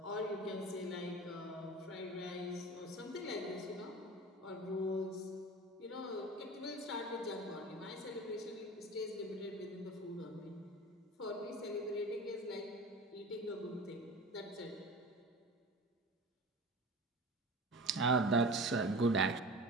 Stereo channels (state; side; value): normal; both; correlation 0.35